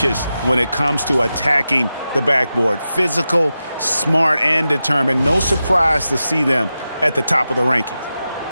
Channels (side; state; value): both; inverted; correlation -0.91